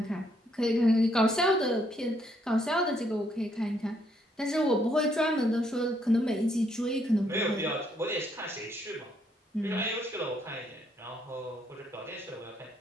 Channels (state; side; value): normal; both; correlation 0.72